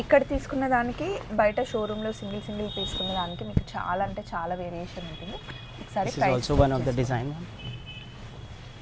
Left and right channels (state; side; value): identical; both; correlation 1.00